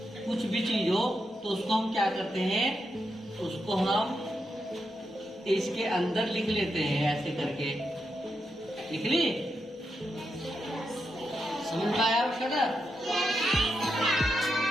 कुछ भी चीज हो, तो उसको हम क्या करते हैं, उसको हम इसके अंदर लिख लेते हैं, ऐसे करके लिख ली। समझ में आया उसका ना?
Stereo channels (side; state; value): both; normal; correlation 0.85